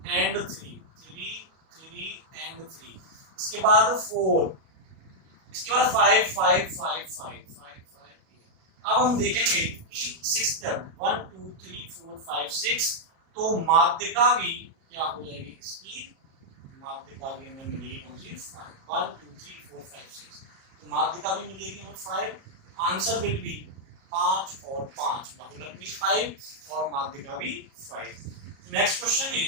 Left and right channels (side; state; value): left; late; 37 ms